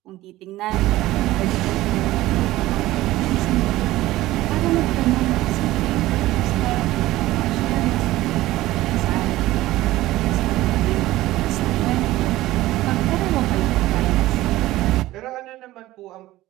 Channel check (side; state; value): left; quieter; 16.6 dB